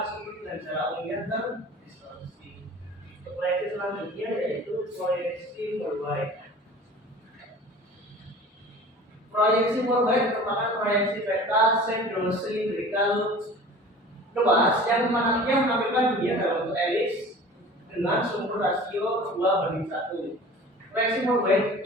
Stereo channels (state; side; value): normal; both; correlation 0.41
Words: sudut dan jarak umumnya dan distorsi. Proyeksi selanjutnya yaitu proyeksi worldwide. Proyeksi worldwide merupakan proyeksi peta sedrosilindrikal luas yang menampilkan dunia dalam bentuk elips dengan sumber rasio 2:1. Proyeksi worldwide